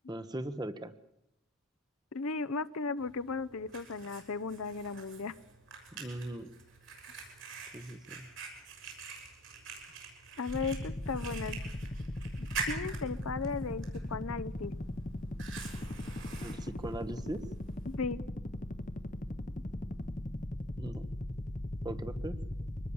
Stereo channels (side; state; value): both; normal; correlation 0.46